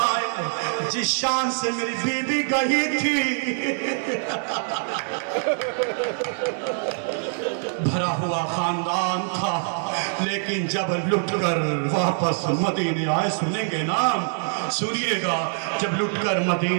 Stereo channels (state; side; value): silent; left; 62 dB below the other